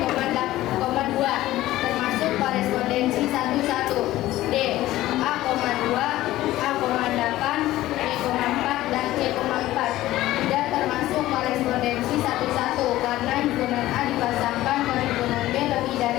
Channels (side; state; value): right; quieter; 15.7 dB